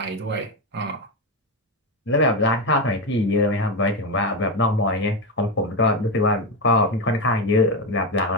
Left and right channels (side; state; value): both; normal; correlation 0.12